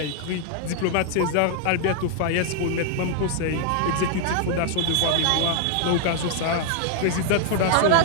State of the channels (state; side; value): different; both; correlation 0.00